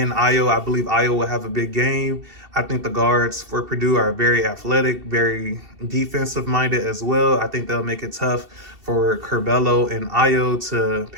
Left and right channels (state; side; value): late; left; 2.7 ms